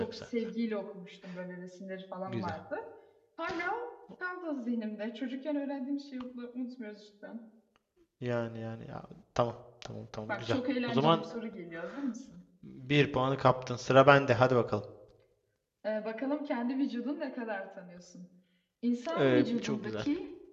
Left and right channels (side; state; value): both; identical; correlation 1.00